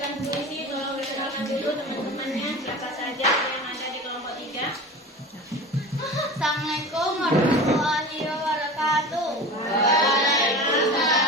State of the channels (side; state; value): both; normal; correlation 0.33